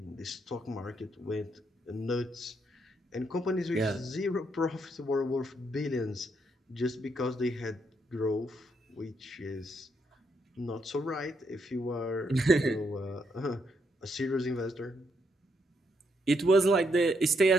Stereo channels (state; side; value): normal; both; correlation 0.76